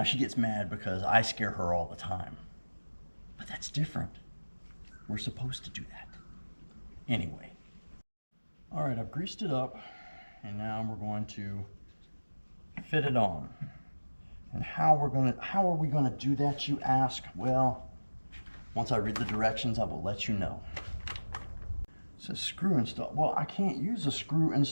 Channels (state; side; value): inverted; both; correlation -1.00